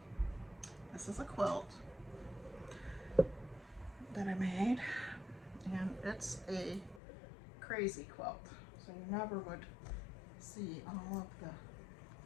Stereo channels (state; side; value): drops out; right; at 7.0 s